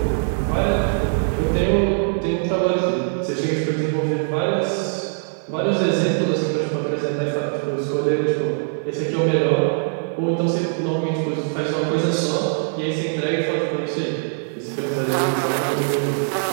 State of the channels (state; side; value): silent; left; 57 dB below the other